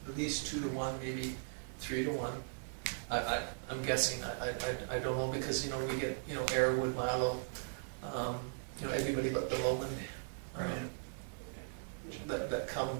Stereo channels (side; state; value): left; silent; digital silence